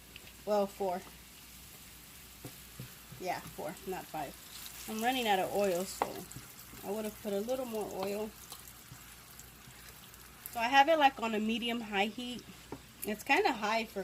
Well, 4. Yeah, 4, not 5. I'm running out of oil, so I would have put a little more oil. So I have it like on a medium-high heat. It's kind of high for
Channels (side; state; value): both; identical; correlation 1.00